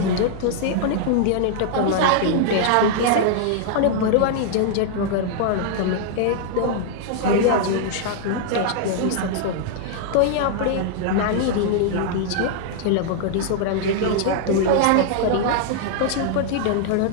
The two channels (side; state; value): both; different; correlation -0.01